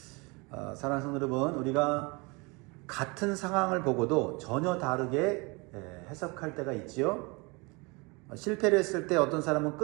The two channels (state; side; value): quieter; left; 27.7 dB